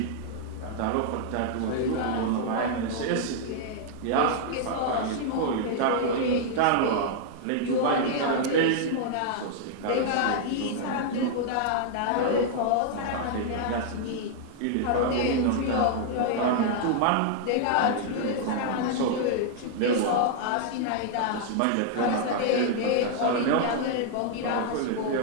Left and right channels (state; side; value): different; both; correlation -0.01